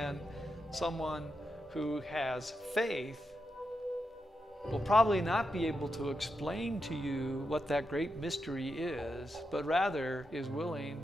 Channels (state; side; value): normal; both; correlation 0.86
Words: someone who has faith will probably not be able to explain to you what that great mystery is, but rather is willing